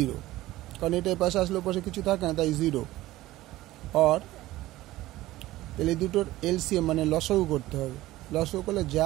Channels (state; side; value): quieter; left; 16.7 dB